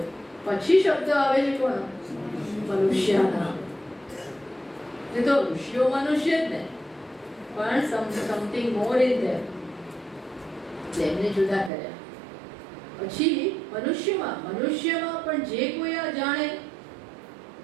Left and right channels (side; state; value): left; drops out; at 11.7 s